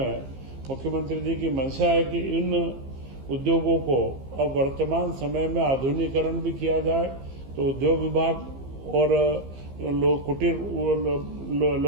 मुख्यमंत्री जी की मंशा है कि इन उद्योगों को अब वर्तमान समय में आधुनिकीकरण भी किया जाए। तो उद्योग विभाग और कुटीर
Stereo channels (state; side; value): late; left; 15 ms